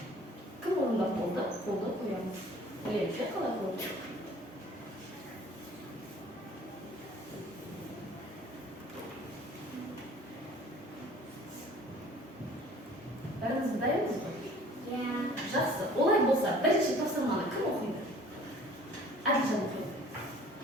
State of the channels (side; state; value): both; normal; correlation 0.50